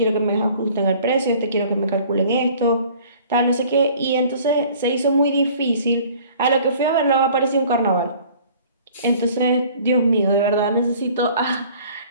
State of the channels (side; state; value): both; inverted; correlation -0.51